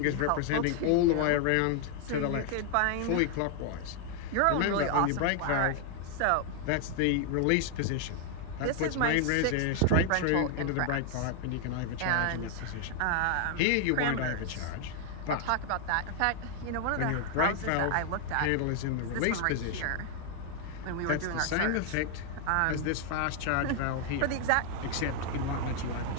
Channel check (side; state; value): both; different; correlation 0.00